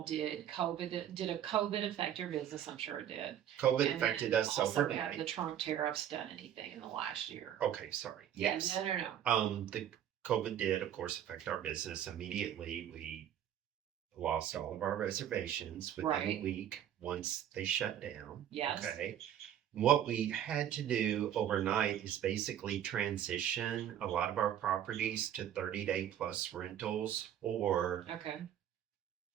did a COVID affect your business? I'm sure it did. COVID And affected then us also, have the overnight. Trump tariffs done anything in the last year? Okay, sorry. Yeah, Yes. no. The COVID did, of course, affect our business immediately. We lost all of our reservations within a Right. week once they shut down. Yes. Okay. What we had to do overnight is basically transition a lot of our properties to 30-day plus rentals or Okay.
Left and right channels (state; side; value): quieter; left; 10.4 dB